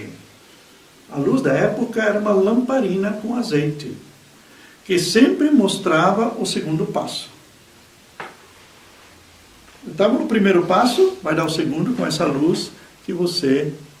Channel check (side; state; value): both; identical; correlation 1.00